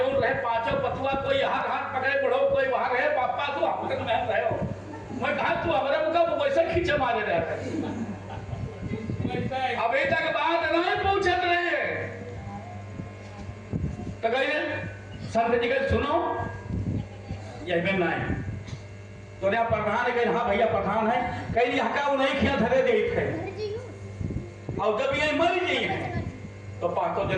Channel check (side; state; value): both; identical; correlation 1.00